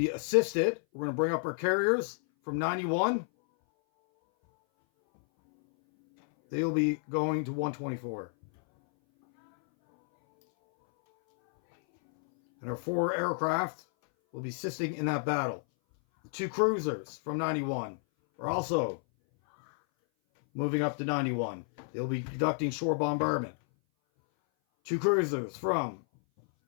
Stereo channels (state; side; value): silent; right; 57 dB below the other